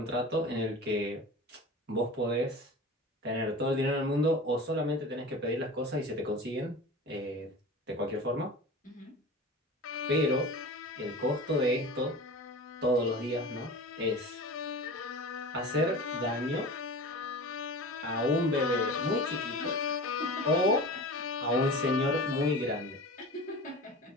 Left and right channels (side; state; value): both; normal; correlation 0.34